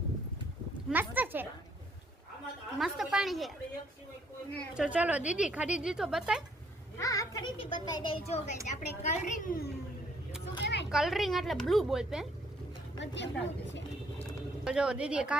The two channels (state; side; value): normal; both; correlation 0.66